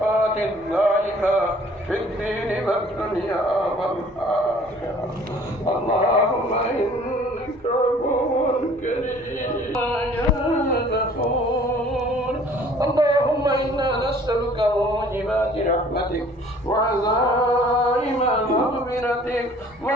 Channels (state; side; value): normal; both; correlation 0.53